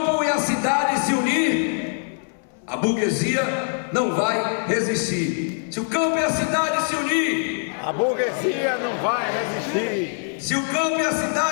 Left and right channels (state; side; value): silent; right; 63 dB below the other